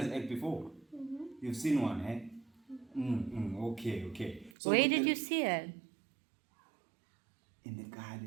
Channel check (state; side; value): drops out; left; at 4.5 s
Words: egg before? You've seen one, eh? Okay. So Where with did the- you see it? In the